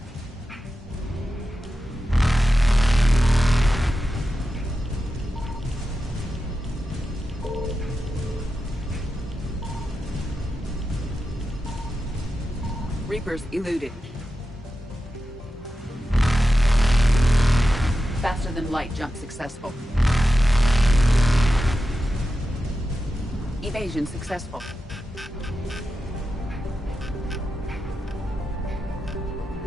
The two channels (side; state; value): both; normal; correlation 0.91